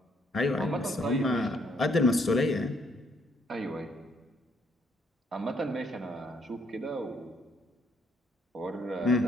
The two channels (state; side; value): normal; both; correlation 0.69